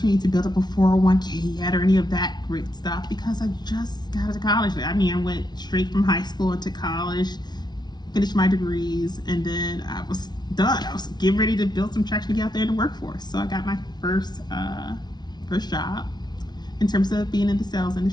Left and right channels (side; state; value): right; late; 0.20 ms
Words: to build up a 401k yet or any of that great stuff because I just got out of college. I mean, I went straight from high school into college, finished my degrees, and then I was done. I was getting ready to build some traction to get out there in the workforce. So I got my first job in terms of being in the sales